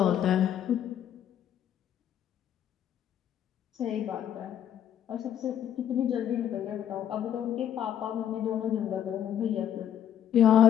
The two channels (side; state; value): right; quieter; 10.0 dB